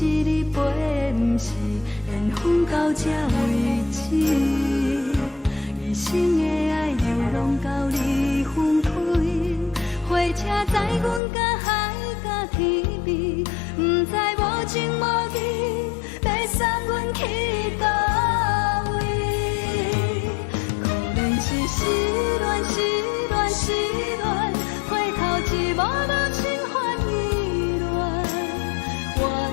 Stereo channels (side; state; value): right; drops out; at 11.2 s